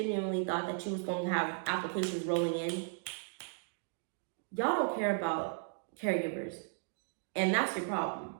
thought that you was going to have applications rolling in? Y'all don't care about caregivers. And that's your problem.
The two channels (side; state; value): left; silent; digital silence